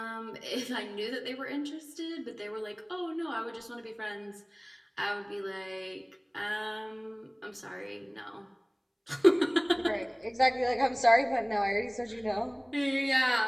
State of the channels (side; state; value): both; identical; correlation 1.00